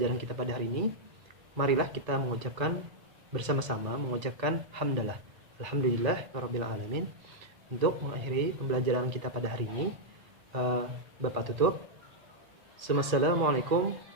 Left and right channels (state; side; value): late; left; 2.0 ms